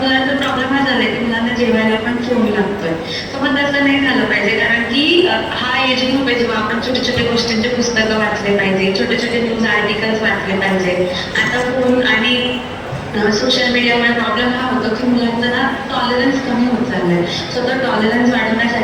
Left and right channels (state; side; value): identical; both; correlation 1.00